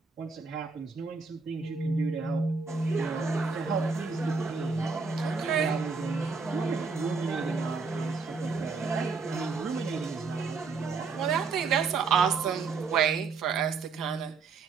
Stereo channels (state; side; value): quieter; left; 4.7 dB